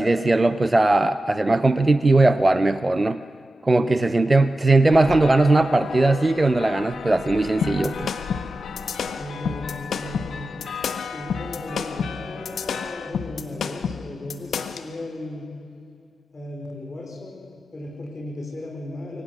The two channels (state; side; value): normal; both; correlation 0.93